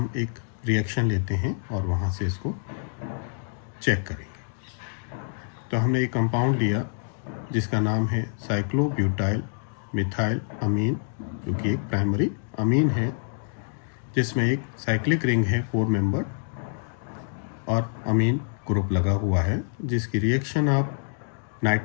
एक रिएक्शन लेते हैं और वहाँ से इसको चेक करेंगे। तो हमने एक कंपाउंड लिया जिसका नाम है साइक्लोब्यूटाइल मिथाइल अमीन, जो कि एक प्राइमरी अमीन है जिसमें एक साइक्लिक रिंग है 4 मेंबर और अमीन ग्रुप लगा हुआ है, जिसकी रिएक्शन आप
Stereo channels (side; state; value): right; silent; digital silence